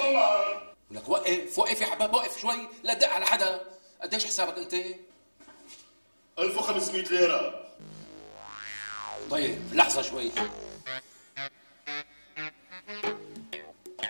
لك وقف يا حباب، وقف شوي لا تدق على حدا. قديش حسابك انت؟ 1500 ليره. طيب لحظة شوي.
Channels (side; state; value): both; inverted; correlation -1.00